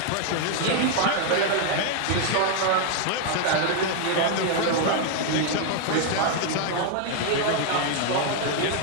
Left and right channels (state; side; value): different; both; correlation 0.00